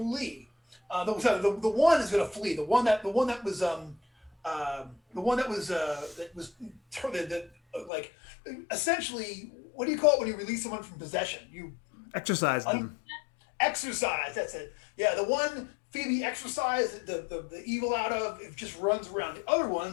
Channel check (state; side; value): drops out; right; at 7.9 s